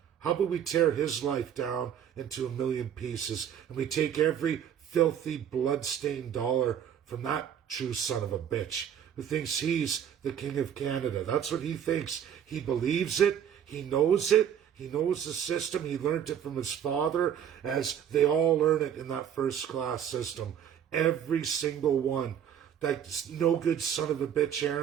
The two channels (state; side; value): quieter; left; 9.1 dB